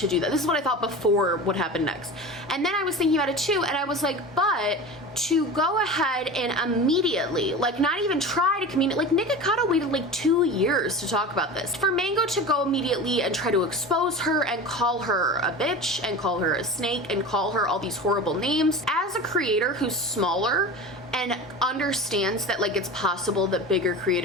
do that. This is what I thought before what happened next. And then I was thinking about it too, and I was like, but to go ahead and immediately, like, not even try to communicate, like Nikocado waited like 2 years to talk about this. For Mango to go immediately and try to expose her and call her a bitch and call her a snake and call her all these horrible names, as a creator who's smaller and understands that like it's possible that bigger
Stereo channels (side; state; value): both; normal; correlation 0.32